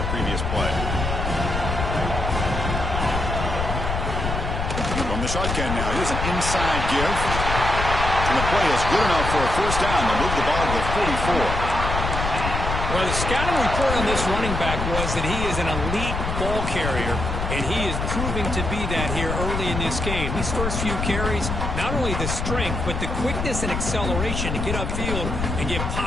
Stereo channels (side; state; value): left; noise; rumble, 3 dB below the sound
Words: previous play. From the shotgun now, here's an inside give. And the play is good enough for a 1st down. They'll move the ball to the 44. Well, the scouting report on this running back was that he is an elite ball carrier, and he is proving to be that here early in this game. These first few carries, not only the strength, but the quickness and acceleration to get upfield and get